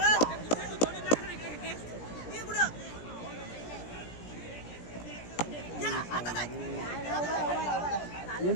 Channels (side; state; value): right; late; 17 ms